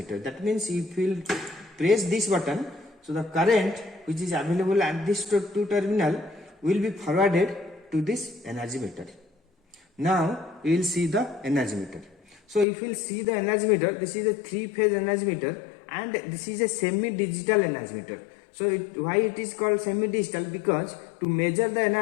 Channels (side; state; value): right; drops out; at 12.7 s